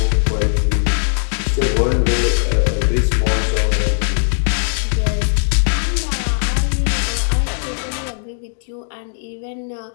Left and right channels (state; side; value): silent; right; digital silence